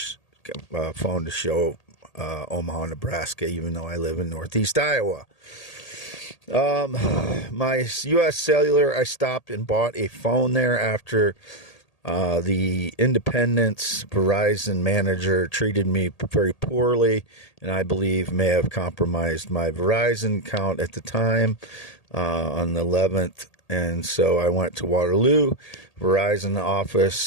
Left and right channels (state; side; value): late; right; 1.8 ms